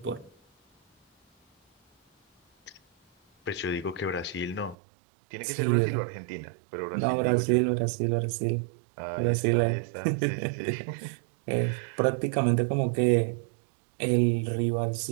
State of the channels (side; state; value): left; drops out; at 4.8 s